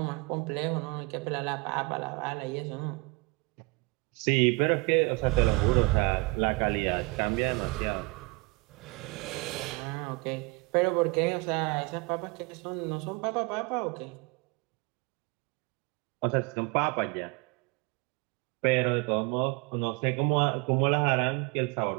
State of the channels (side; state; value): left; quieter; 26.3 dB